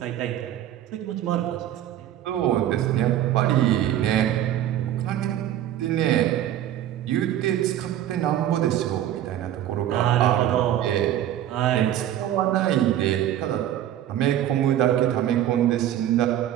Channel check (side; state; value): left; quieter; 11.8 dB